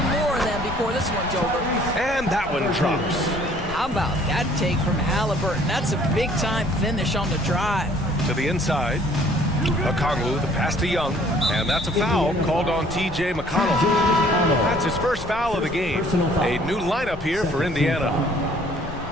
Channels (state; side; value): noise; left; rumble, 14 dB below the sound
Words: more of them before this one's over. And that one drops. How about that take from Halliburton? That's a big-time finish on the drive. To the inside. Okongwu, the pass to Young. And that's a foul called on T.J. McConnell. That's his first foul of the game. A new lineup here for Indiana.